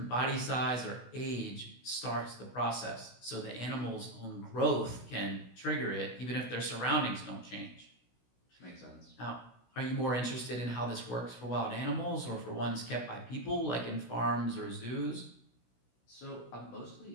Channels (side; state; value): right; late; 16 ms